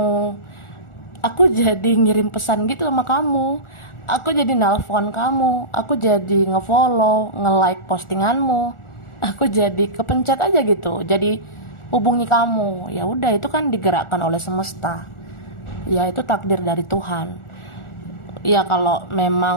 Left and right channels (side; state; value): right; late; 1.4 ms